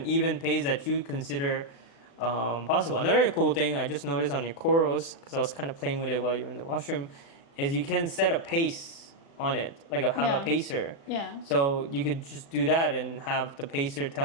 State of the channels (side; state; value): right; late; 36 ms